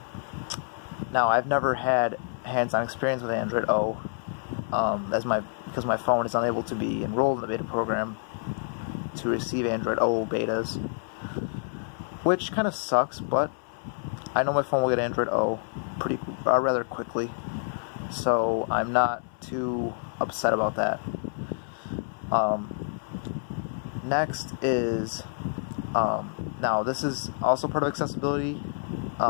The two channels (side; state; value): right; silent; 59 dB below the other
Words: I've never had hands-on experience with Android O, because my phone is unable to be enrolled in the beta program to receive Android O betas, which kind of sucks, but I know my phone will get Android O rather quickly, so I'm not too upset about that. Next is, now this is also part of accessibility. It